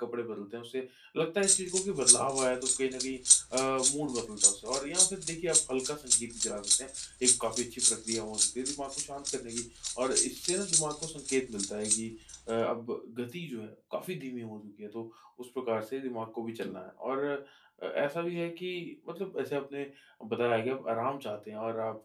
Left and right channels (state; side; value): identical; both; correlation 1.00